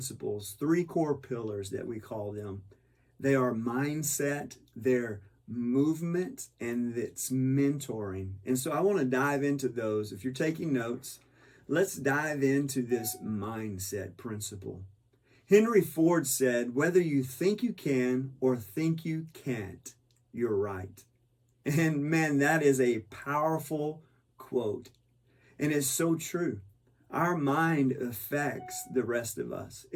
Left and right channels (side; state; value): both; identical; correlation 1.00